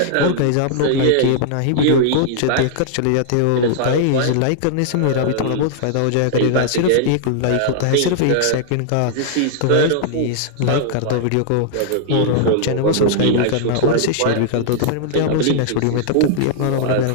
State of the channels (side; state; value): both; different; correlation -0.01